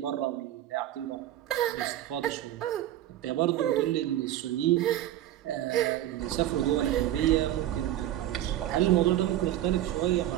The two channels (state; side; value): quieter; left; 13.1 dB